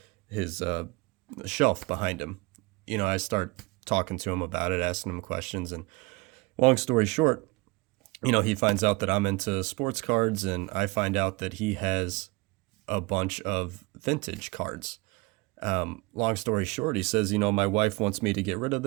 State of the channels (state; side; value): quieter; left; 25.4 dB